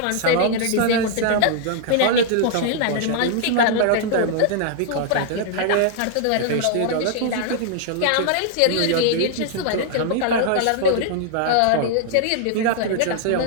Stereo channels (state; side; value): different; both; correlation 0.00